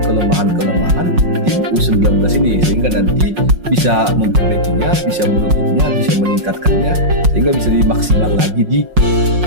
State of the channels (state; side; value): late; left; 5.5 ms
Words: tim U19 ini sehingga nanti bisa memperbaikinya, bisa menutupnya, bisa meningkatkannya sehingga bisa dimaksimal lagi di